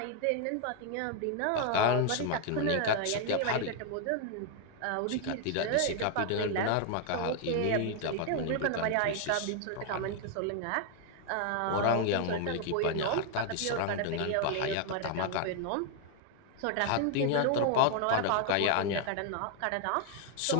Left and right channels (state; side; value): different; both; correlation 0.01